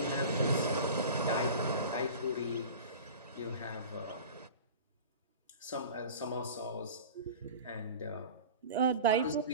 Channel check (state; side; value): inverted; both; correlation -0.36